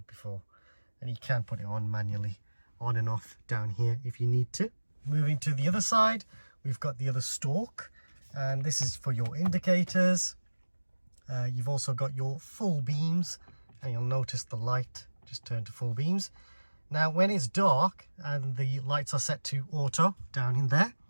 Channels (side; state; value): both; inverted; correlation -1.00